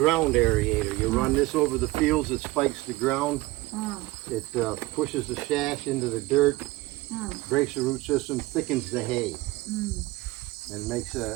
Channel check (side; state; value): left; quieter; 19.9 dB